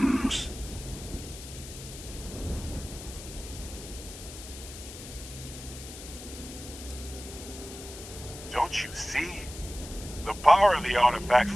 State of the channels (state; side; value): noise; left; hiss, 13 dB below the sound